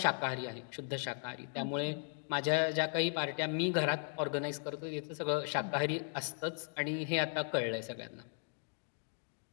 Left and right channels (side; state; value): right; silent; 53 dB below the other